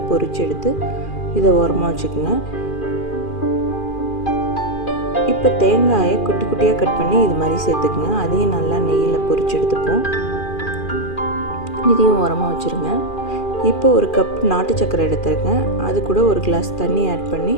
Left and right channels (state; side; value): late; right; 2.4 ms